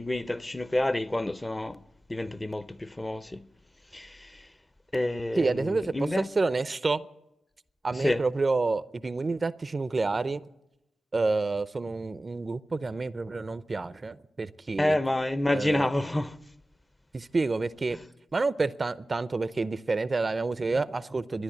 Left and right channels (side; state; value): both; normal; correlation 0.96